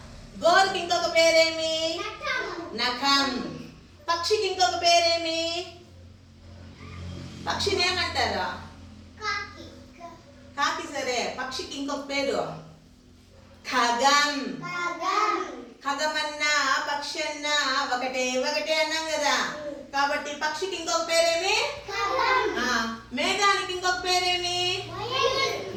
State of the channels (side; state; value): both; identical; correlation 1.00